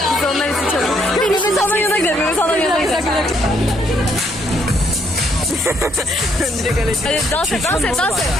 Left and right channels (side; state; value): both; normal; correlation 0.71